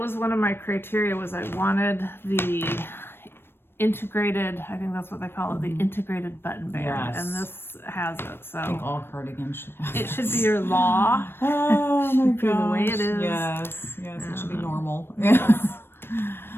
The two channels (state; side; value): late; right; 0.11 ms